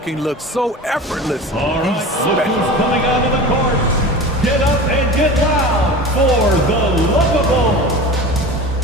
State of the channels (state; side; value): normal; both; correlation 0.34